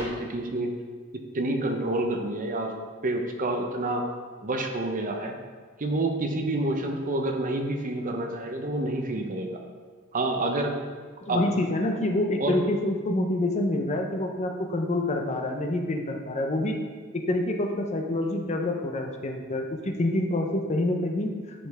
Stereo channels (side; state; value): both; normal; correlation 0.48